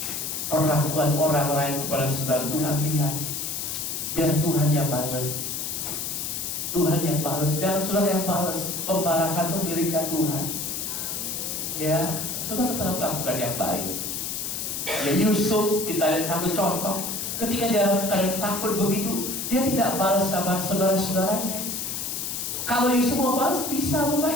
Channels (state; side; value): noise; left; hiss, 3 dB below the sound